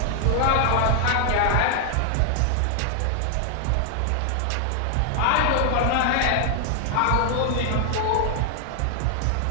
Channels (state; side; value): different; both; correlation 0.00